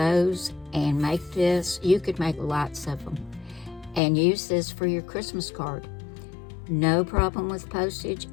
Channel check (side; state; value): right; drops out; at 4.0 s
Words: and make this. You could make lots of them and use this for your Christmas card. No problem with postage,